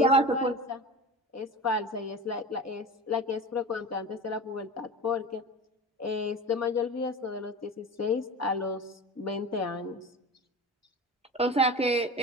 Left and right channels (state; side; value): normal; both; correlation 0.32